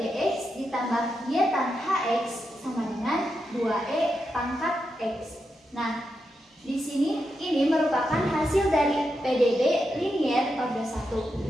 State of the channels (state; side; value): normal; both; correlation 0.86